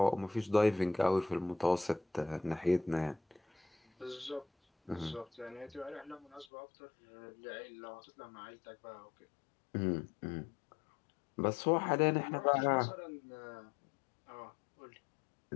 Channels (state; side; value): drops out; right; at 6.5 s